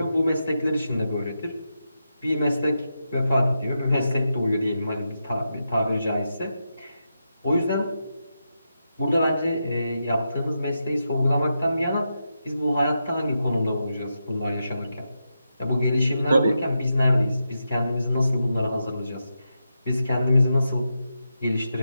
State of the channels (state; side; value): inverted; both; correlation -0.87